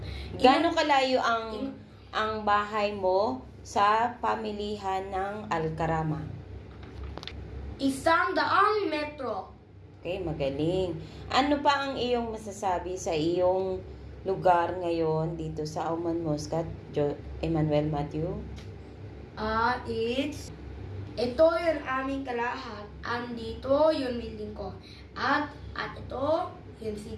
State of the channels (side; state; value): both; identical; correlation 1.00